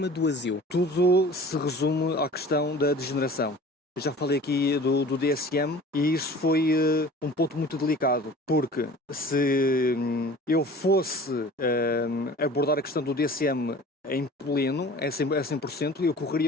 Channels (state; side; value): normal; both; correlation 0.43